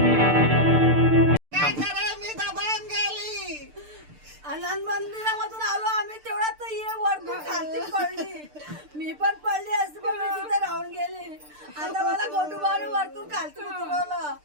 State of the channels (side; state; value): left; late; 6.7 ms